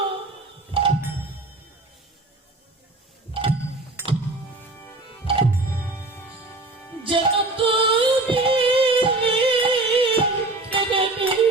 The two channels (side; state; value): left; quieter; 3.0 dB